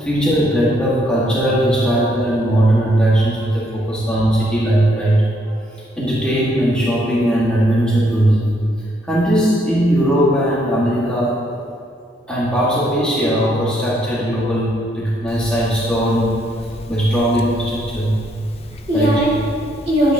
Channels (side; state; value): both; normal; correlation 0.72